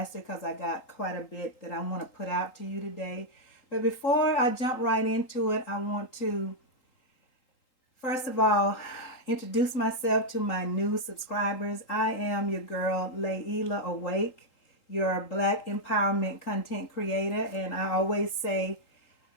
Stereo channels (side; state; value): right; late; 3.8 ms